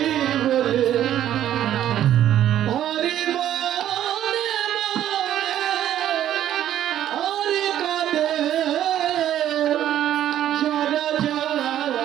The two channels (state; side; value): quieter; left; 11.5 dB